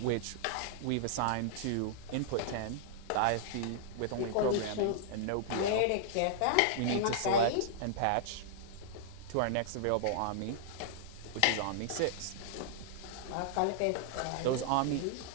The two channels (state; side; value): different; both; correlation -0.01